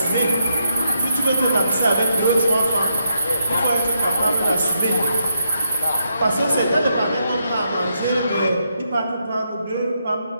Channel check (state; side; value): inverted; both; correlation -0.80